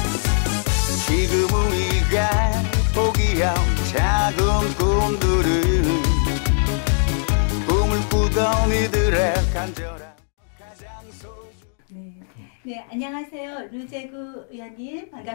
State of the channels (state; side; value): silent; right; digital silence